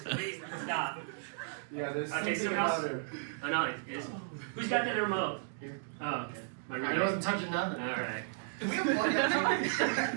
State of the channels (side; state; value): left; silent; digital silence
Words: Please stop. Yeah, there's Okay, something someone about else. her. Oh no, it's who's got the remote? Oh, okay. My I remote. wasn't touching nothing. All right.